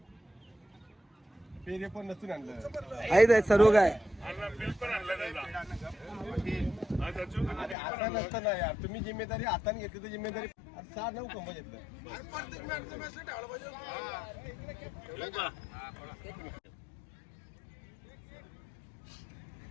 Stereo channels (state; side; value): drops out; right; at 7.8 s